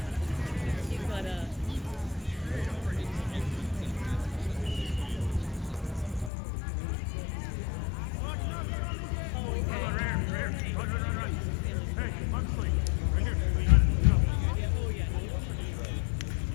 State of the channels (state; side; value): drops out; right; at 6.3 s